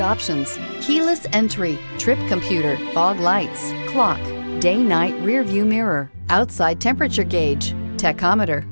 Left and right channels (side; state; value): both; inverted; correlation -1.00